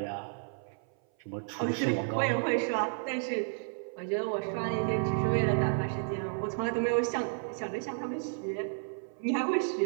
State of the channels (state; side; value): silent; left; 56 dB below the other